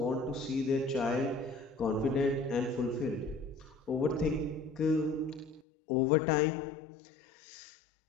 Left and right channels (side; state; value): right; drops out; at 5.7 s